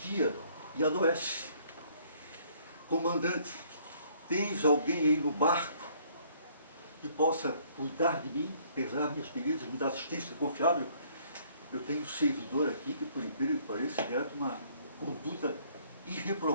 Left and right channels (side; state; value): both; inverted; correlation -0.62